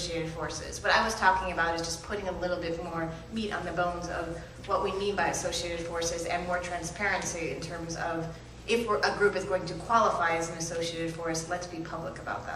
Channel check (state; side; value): identical; both; correlation 1.00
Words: forces. What I was talking about is just putting a little bit more meat on the bones of what we mean by associated forces and more transparency in terms of if a group is going to qualify as an associated force, let's be public about